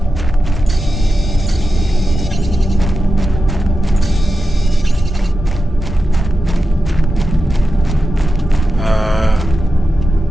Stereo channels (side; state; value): both; normal; correlation 0.91